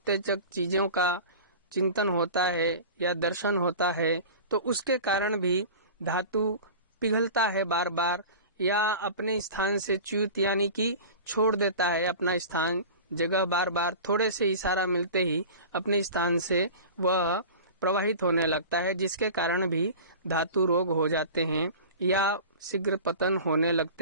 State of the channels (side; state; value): both; inverted; correlation -0.36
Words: चीज़ों का चिंतन होता है या दर्शन होता है, तो उसके कारण भी धातु पिघलता है बार बार या अपने स्थान से च्युत यानी कि छोड़ देता है अपना स्थान, जगह बार बार थोड़े से इशारा मिलते ही अपने स्थान से वह प्रवाहित होने लगता है, जिसके कारण भी धातु रोग हो जाते हैं या शीघ्र पतन होने